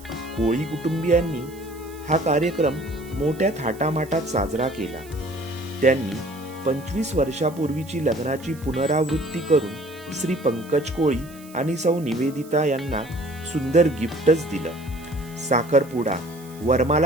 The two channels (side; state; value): right; noise; hiss, 22 dB below the sound